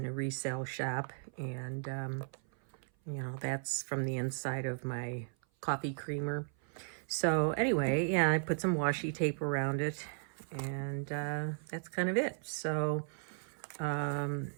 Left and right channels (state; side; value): silent; left; 54 dB below the other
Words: a resale shop, and that's from the inside of my coffee creamer. So anyway, yeah, I put some washi tape around it, and that's kind of it. So